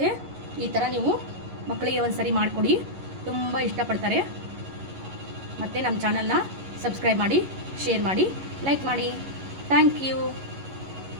ಈ ಥರ ನೀವು ಮಕ್ಕಳಿಗೆ ಒಂದು ಸರಿ ಮಾಡಿಕೊಡಿ, ತುಂಬ ಇಷ್ಟಪಡ್ತಾರೆ. ಮತ್ತು ನಮ್ಮ ಚಾನಲ್ನ ಸಬ್ಸ್ಕ್ರೈಬ್ ಮಾಡಿ, ಶೇರ್ ಮಾಡಿ, ಲೈಕ್ ಮಾಡಿ. Thank you.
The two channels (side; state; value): left; late; 11 ms